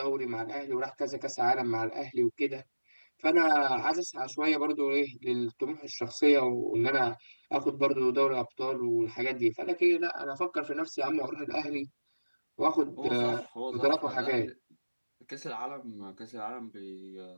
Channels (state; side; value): inverted; both; correlation -1.00